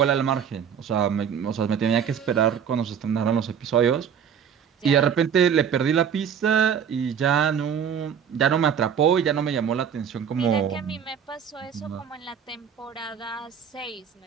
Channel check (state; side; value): quieter; left; 7.8 dB